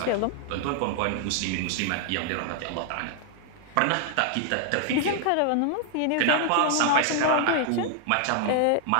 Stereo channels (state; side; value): different; both; correlation 0.00